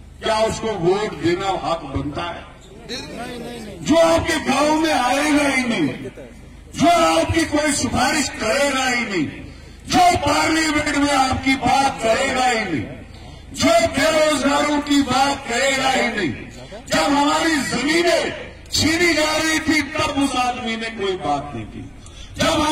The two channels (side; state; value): both; identical; correlation 1.00